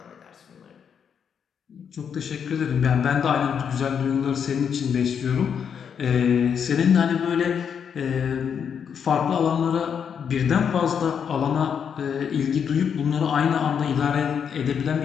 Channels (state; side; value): quieter; right; 7.4 dB